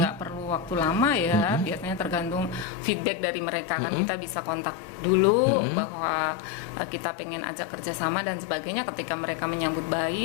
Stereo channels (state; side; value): drops out; right; at 2.7 s